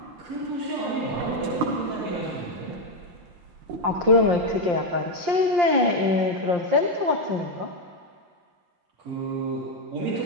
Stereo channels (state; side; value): late; left; 5.7 ms